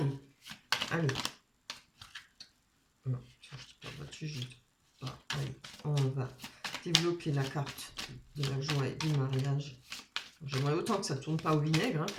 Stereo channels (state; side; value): identical; both; correlation 1.00